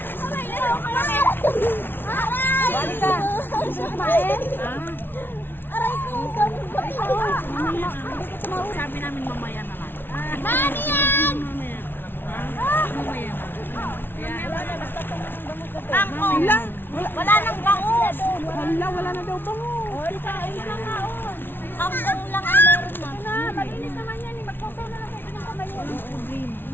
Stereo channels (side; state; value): right; late; 0.10 ms